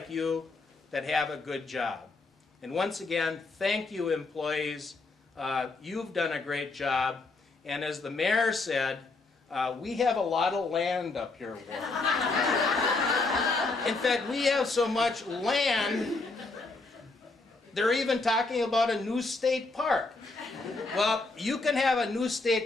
you that have a good job? And once again, thank you, employees. You've done a great job. And as the mayor said, we have a lot of land up here, Ward. In fact, we have so much land, they're even talking about a new state park. Well, you can have a new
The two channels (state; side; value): quieter; right; 3.5 dB